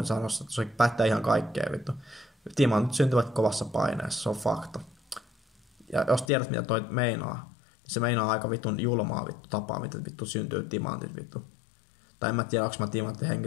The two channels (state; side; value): drops out; right; at 6.2 s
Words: sanoa, että se pättää ihan kaikkea vittu. Timantit syntyvät kovassa paineessa, se on fakta. Ja jos tiedät mitä toi meinaa, niin se meinaa aika vittun julmaa vittu tapaa, miten vittu syntyy timantit vittu. Tai en mä tiedä, onko mä timantti